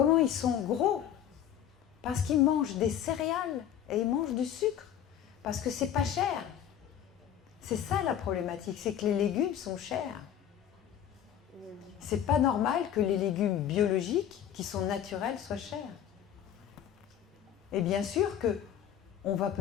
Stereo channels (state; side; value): quieter; right; 9.9 dB